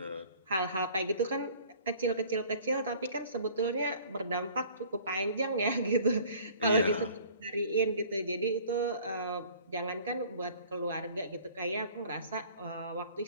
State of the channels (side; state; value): both; inverted; correlation -0.50